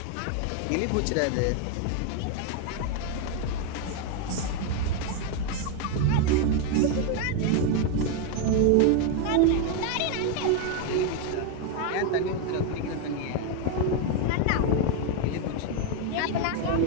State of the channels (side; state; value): both; different; correlation 0.01